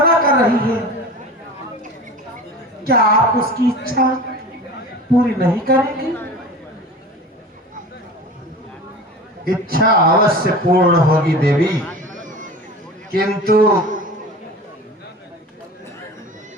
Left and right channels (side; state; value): both; normal; correlation 0.35